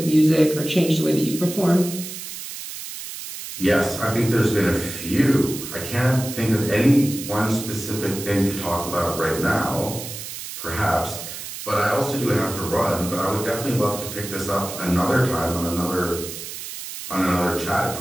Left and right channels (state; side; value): noise; right; hiss, 9 dB below the sound